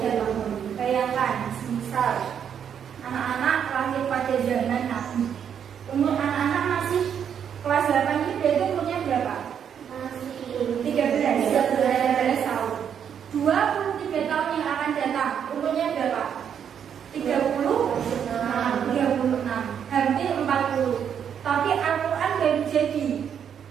Bayangkan, misal anak-anak lahir pada zaman Nabi, umur anak-anak masih kelas 8 itu berarti umurnya berapa? Masih 13 tahun. 23 tahun yang akan datang, umurnya berapa? 36, hampir 40. Tapi Al-Quran baru jadi.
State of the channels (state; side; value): quieter; left; 8.3 dB